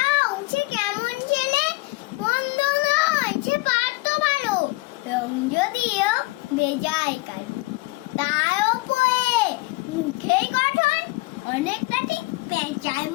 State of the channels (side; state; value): right; quieter; 22.9 dB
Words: সে কেমন ছেলে? মন্দ নয়, সে পারতো ভালো, রং যদিও বেজায় কালো। তার ওপরে মুখেই গঠন অনেকটা ঠিক পেঁচার